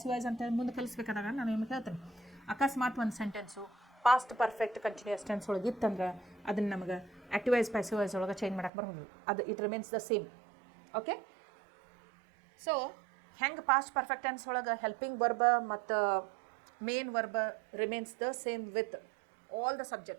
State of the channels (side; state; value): left; drops out; at 8.7 s